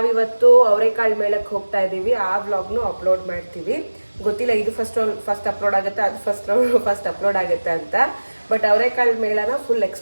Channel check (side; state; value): both; inverted; correlation -1.00